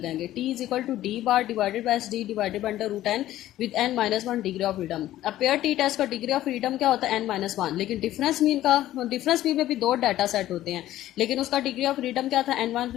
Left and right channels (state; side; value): quieter; right; 14.0 dB